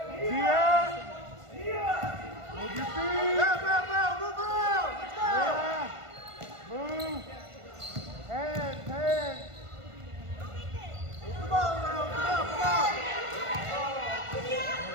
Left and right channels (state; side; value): late; left; 1.5 ms